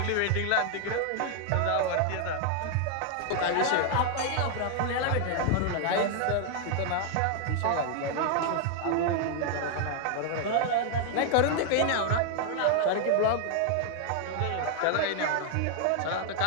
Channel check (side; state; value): both; different; correlation 0.00